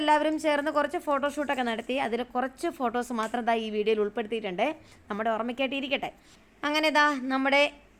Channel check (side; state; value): both; identical; correlation 1.00